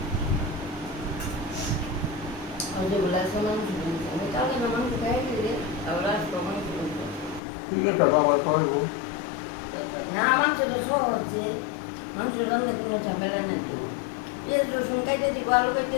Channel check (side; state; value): right; drops out; at 7.4 s